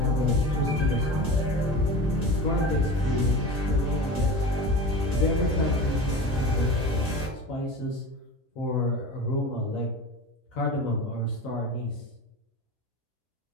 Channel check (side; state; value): both; normal; correlation 0.31